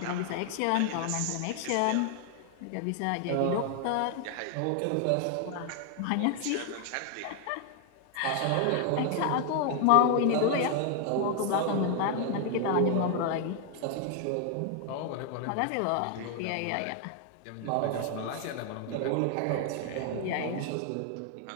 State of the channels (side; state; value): both; different; correlation 0.00